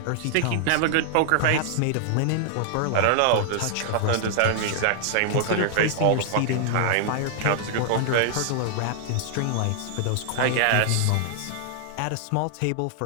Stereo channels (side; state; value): both; different; correlation -0.01